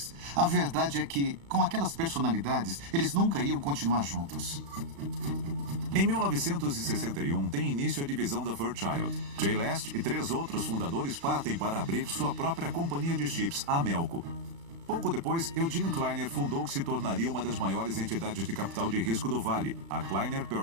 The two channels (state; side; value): late; left; 36 ms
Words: A verdade é que, com aquelas personalidades, eles nunca iam continuar juntos. Em 1961, tem início a divisão da Fairchild. Jay Last e 3 outros fundadores partem para abrir sua própria companhia de chips, a Melco. Pouco depois, Eugene Kleiner fundou o que se tornaria uma das maiores entidades de capital de risco do Vale, a Kleiner